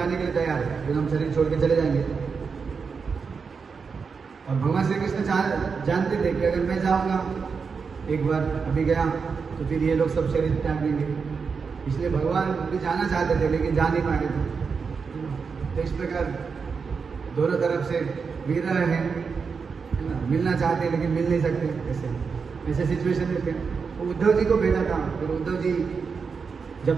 के लिए तैयार हैं, फिर हम शरीर छोड़ के चले जाएंगे। और भगवान श्री कृष्ण जानते थे कि अगर मैं जाऊँगा एक बार, अभी गया, तो फिर ये लोग सब शरीर त्याग देंगे। इसलिए भगवान भी जाना चाहते थे, लेकिन जा नहीं पाए थे। तो इस प्रकार दोनों तरफ से विरह है ना, मिलना चाहते हैं लेकिन मिल नहीं सकते, ऐसे सिचुएशन में थे। तो उद्धव जी को भेजा था, फिर उद्धव जी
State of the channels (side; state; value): left; quieter; 5.4 dB